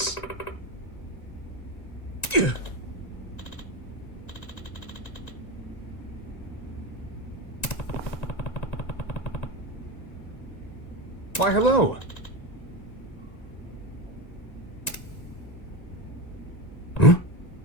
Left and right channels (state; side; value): late; right; 1.9 ms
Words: Why, hello. Huh?